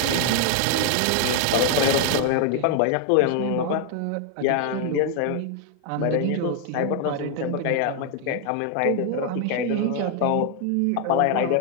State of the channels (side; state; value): both; different; correlation 0.00